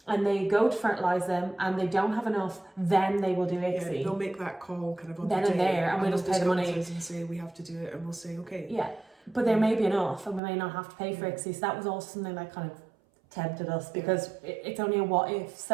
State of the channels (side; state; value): left; drops out; at 10.4 s